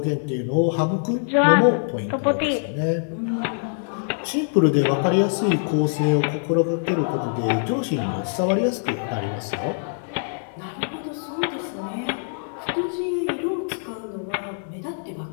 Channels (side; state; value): right; silent; digital silence